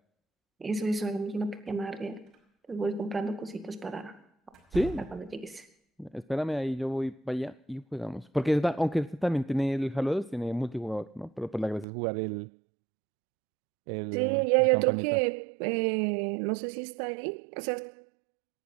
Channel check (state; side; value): drops out; left; at 11.9 s